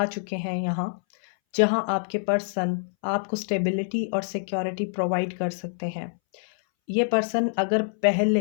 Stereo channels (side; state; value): right; silent; 61 dB below the other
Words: चुके हैं यहाँ, जहाँ आपके पर्सन आपको स्टेबिलिटी और सिक्योरिटी प्रोवाइड कर सकते हैं। ये पर्सन अगर